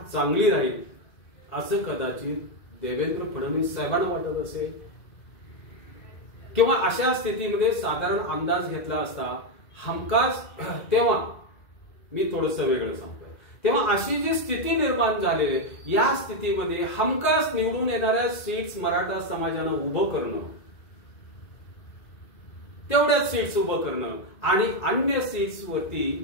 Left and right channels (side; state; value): right; late; 2.0 ms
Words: चांगली राहील असं कदाचित देवेंद्र फडणवीस साहेबांना वाटत असेल. किंवा अशा स्थितीमध्ये साधारण अंदाज घेतला असता हमखास, तेव्हा मी थोडंसं वेगळं सांगतोय, तेव्हा अशी जी स्थिती निर्माण झाली या स्थितीमध्ये हमखास निवडून येणाऱ्या सीट्स मराठा समाजानं उभं करणं, तेवढ्याच सीट्स उभं करणं आणि अन्य सीट्स वरती